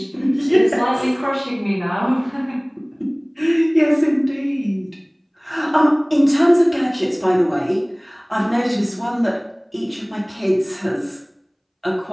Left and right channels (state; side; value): identical; both; correlation 1.00